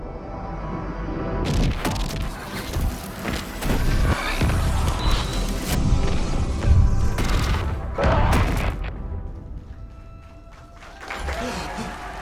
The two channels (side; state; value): both; identical; correlation 1.00